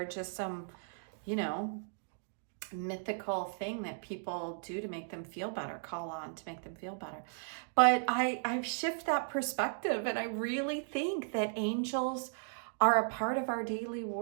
just some, mythical thing that people do to make them feel better, call on to make them feel better. But I've shifted that perspective, and I really think that angels are a part of our daily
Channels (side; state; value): left; silent; digital silence